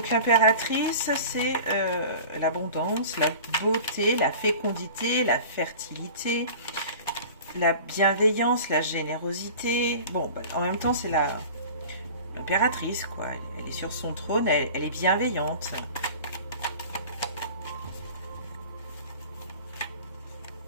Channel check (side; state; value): both; inverted; correlation -0.40